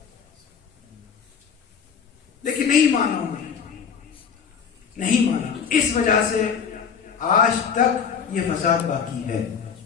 لیکن نہیں مانا انہیں، نہیں مانا. اس وجہ سے آج تک یہ فساد باقی ہے،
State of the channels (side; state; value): right; quieter; 6.9 dB